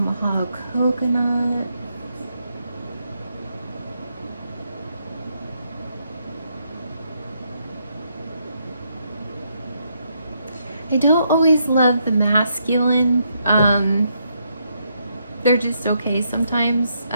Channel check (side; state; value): both; inverted; correlation -0.77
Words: coconut. I don't always love the masculine. They're just okay sometimes.